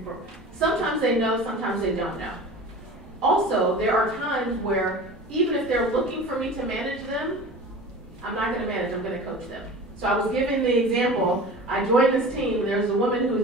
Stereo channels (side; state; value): both; normal; correlation 0.37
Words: for... Sometimes they know, sometimes they don't know. Also, there are times where even if they're looking for me to manage them, I'm not going to manage, I'm going to coach them. So I was giving the example, I joined this team, and there's a woman